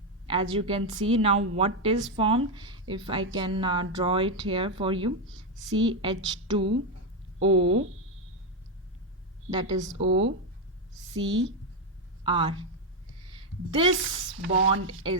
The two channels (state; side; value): normal; both; correlation 0.05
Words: as you can see now, what is formed, if I can draw it here for you, CH2O, that is OCr. This bond